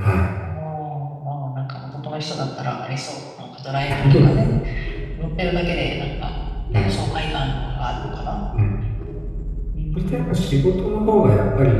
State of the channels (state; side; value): identical; both; correlation 1.00